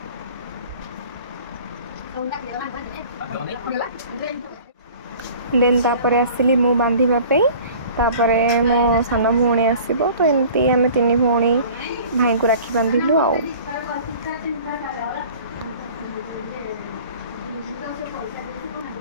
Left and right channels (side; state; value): both; inverted; correlation -0.46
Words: देन तापरे आसिली मु बांधिबा पे तापरे मो सान भौणी आसीबो तो एमती आमे तीन भौणी भाई को राखी बांधिलु आउ।